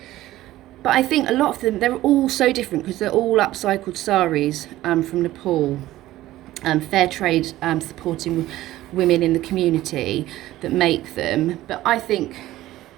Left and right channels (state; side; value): quieter; left; 15.5 dB